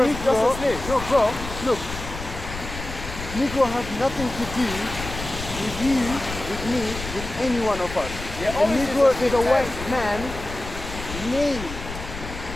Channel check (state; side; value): noise; left; rumble, 9 dB below the sound